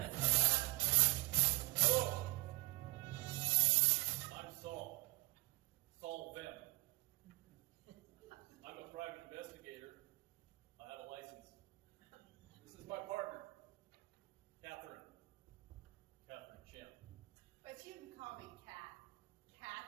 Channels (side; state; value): left; quieter; 24.0 dB